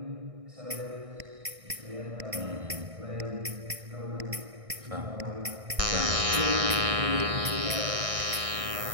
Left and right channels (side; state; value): left; late; 1.6 ms